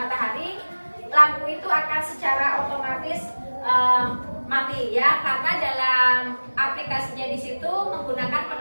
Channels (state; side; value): inverted; both; correlation -1.00